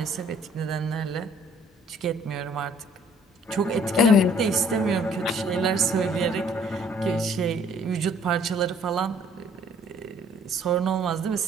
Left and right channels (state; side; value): normal; both; correlation 0.59